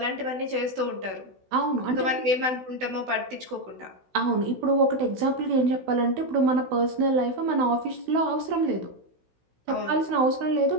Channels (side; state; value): left; late; 16 ms